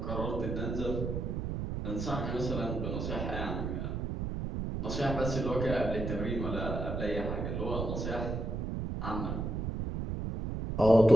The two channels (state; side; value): noise; right; rumble, 3 dB below the sound